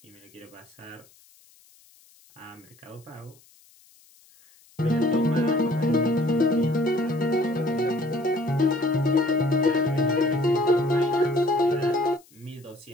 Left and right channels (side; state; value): left; noise; hiss, 29 dB below the sound